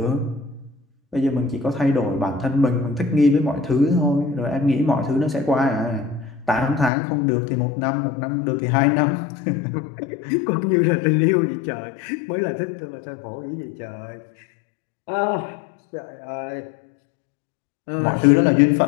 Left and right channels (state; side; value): drops out; right; at 6.9 s